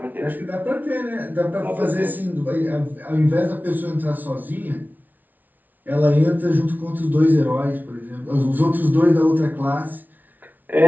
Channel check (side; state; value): left; late; 0.081 ms